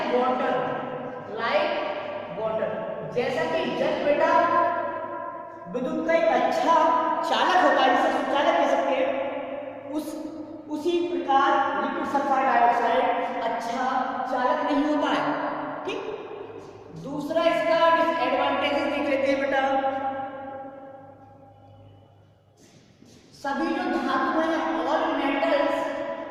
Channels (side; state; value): both; identical; correlation 1.00